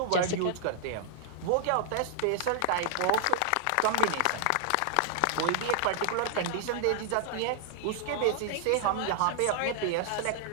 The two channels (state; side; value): different; both; correlation -0.01